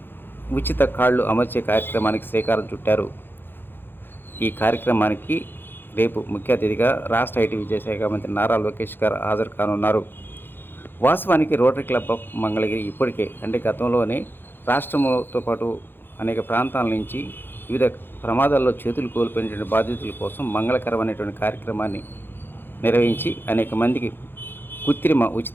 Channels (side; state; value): right; late; 0.10 ms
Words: ఉచిత కాళ్ళు అమర్చే కార్యక్రమానికి శ్రీకారం చుట్టారు. ఈ కార్యక్రమానికి రేపు ముఖ్య అతిథిగా రాష్ట్ర ఐటీ విద్యాశాఖ మంత్రి నారా లోకేష్ గారు హాజరు కానున్నారు. వాస్తవానికి రోటరీ క్లబ్ ఆఫ్ మంగళగిరి ఇప్పటికే గతంలోనే రాష్ట్రంతో పాటు అనేక ప్రాంతాల నుంచి వివిధ ప్రమాదాల్లో చేతులు కోల్పోయినటువంటి బాధితుల కోసం మంగళకరమైనటువంటి కార్యక్రమాన్ని నిర్వహించి అనేక మందికి కృత్రిమ